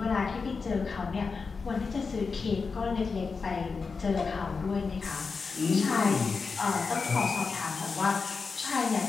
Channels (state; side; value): quieter; right; 4.8 dB